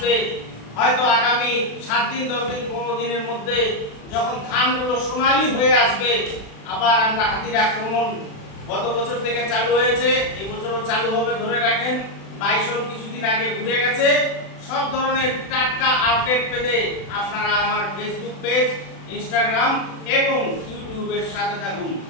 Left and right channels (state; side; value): late; right; 36 ms